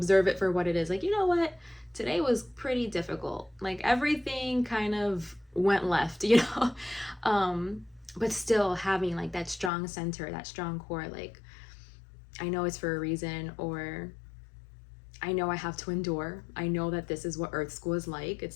it for what it is. Like, you know what, today was pretty difficult. Like everything kind of went left, you know? But still having like that strong center, that strong core, like I know it's for a reason, or I know I have to endure. I know that this is what Earth School is like.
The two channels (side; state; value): right; drops out; at 9.7 s